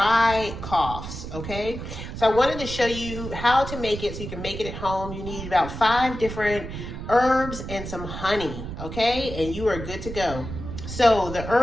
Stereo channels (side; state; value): right; noise; rumble, 8 dB below the sound